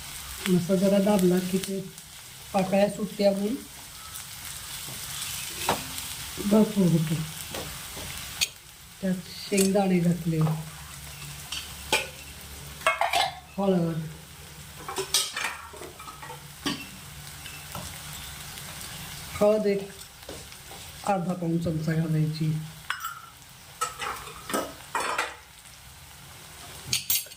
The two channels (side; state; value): both; identical; correlation 1.00